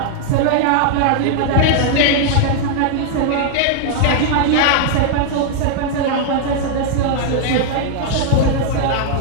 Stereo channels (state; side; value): different; both; correlation -0.01